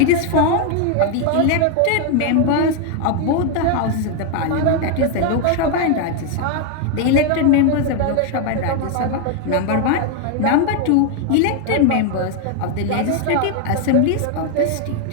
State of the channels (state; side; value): different; both; correlation 0.00